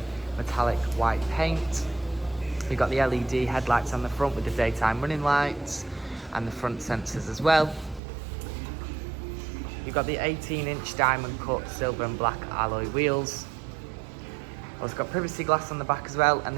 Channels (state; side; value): drops out; left; at 8.0 s